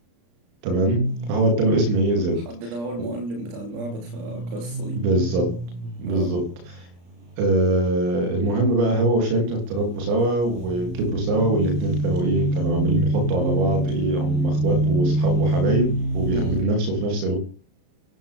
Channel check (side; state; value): left; late; 34 ms